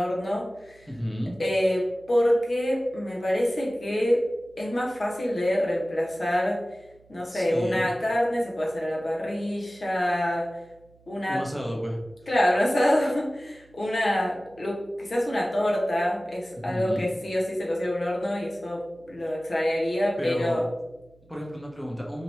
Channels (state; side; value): noise; right; hum, 29 dB below the sound